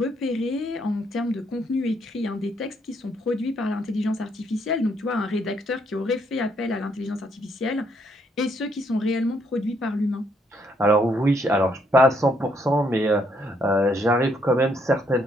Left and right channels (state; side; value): normal; both; correlation 0.72